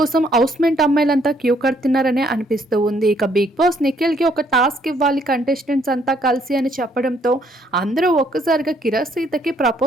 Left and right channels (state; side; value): normal; both; correlation 0.68